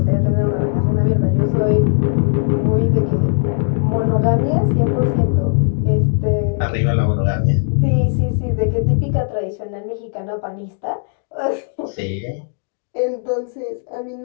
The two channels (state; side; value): silent; right; digital silence